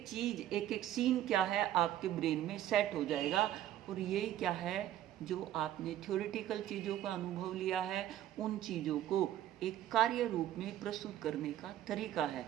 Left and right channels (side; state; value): left; quieter; 12.3 dB